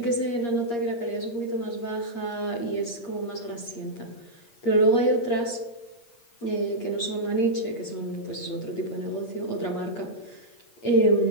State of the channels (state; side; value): late; right; 8.5 ms